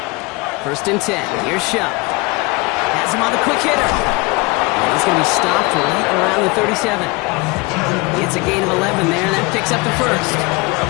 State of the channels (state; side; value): quieter; right; 25.4 dB